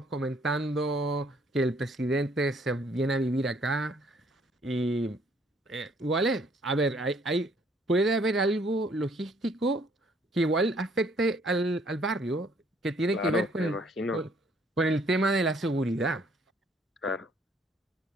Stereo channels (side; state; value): both; normal; correlation 0.63